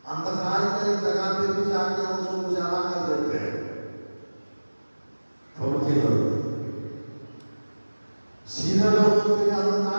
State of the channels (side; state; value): both; inverted; correlation -1.00